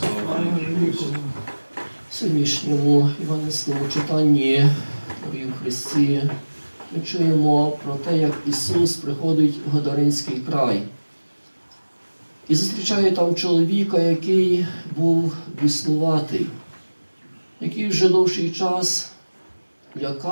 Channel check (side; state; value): both; inverted; correlation -1.00